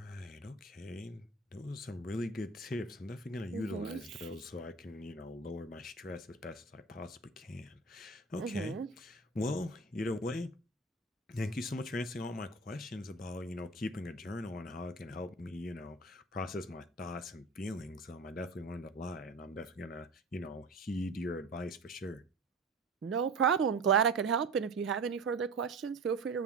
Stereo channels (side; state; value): left; quieter; 3.3 dB